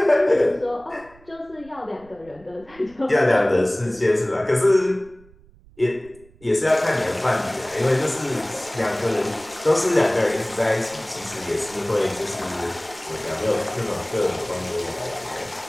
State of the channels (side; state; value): right; noise; rumble, 26 dB below the sound